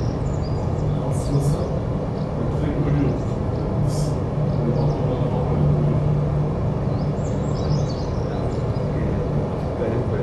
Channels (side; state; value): both; identical; correlation 1.00